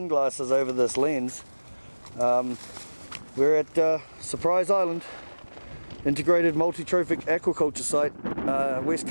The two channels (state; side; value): inverted; both; correlation -1.00